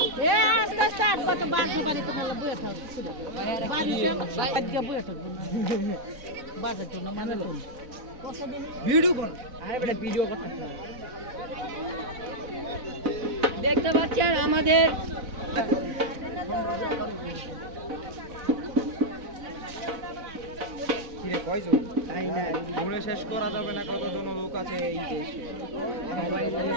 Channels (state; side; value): late; left; 4.0 ms